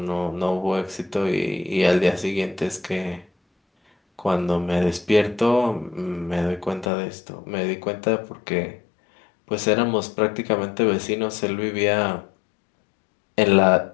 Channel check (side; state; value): right; drops out; at 6.9 s